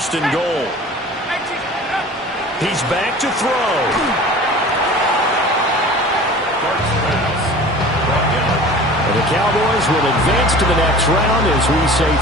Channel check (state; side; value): normal; both; correlation 0.41